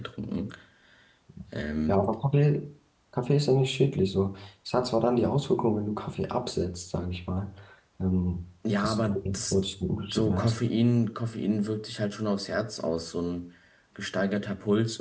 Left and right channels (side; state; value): both; identical; correlation 1.00